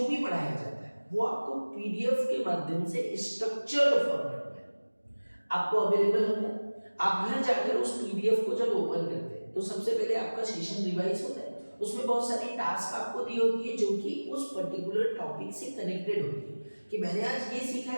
भी पढ़ाया जाता है वो आपको पीडीएफ के माध्यम से स्ट्रक्चर्ड फॉर्मेट में आपको अवेलेबल होता है। आप घर जाकर उस पीडीएफ को जब ओपन करते हैं तो सबसे पहले आपका सेशन रिवाइज होता है। उसमें बहुत सारी टास्क आपको दी होती है जो कि उस पर्टिकुलर टॉपिक से कनेक्टेड होती है कि मैंने आज ये सीखा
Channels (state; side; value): inverted; both; correlation -1.00